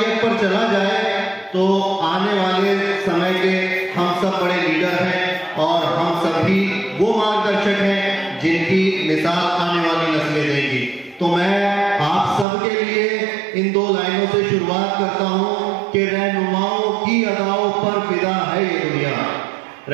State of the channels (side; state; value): left; drops out; at 12.5 s